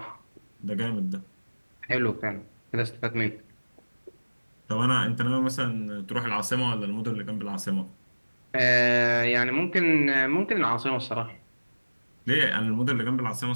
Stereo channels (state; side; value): inverted; both; correlation -1.00